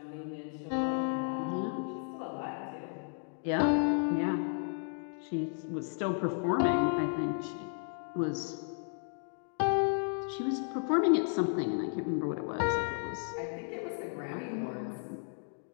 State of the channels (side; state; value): right; silent; 55 dB below the other